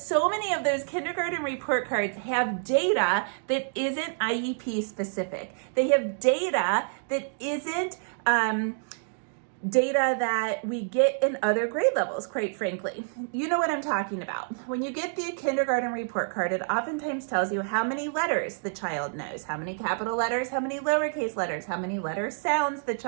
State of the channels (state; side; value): silent; left; digital silence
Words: so many of those kindergarten report cards have data that isn't IEP specific. They have data that isn't data that we get in other grade levels, quite frankly. You know what I'm talking about. When you get the kindergarten report card, it oftentimes tells you how many letters the child knows, how many capital letters, how many lowercase letters, how many letter sounds the